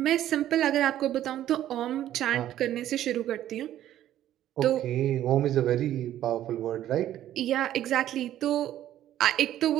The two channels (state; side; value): quieter; left; 12.3 dB